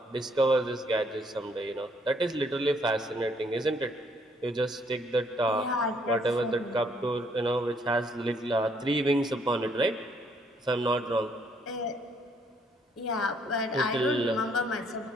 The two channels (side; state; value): both; normal; correlation 0.67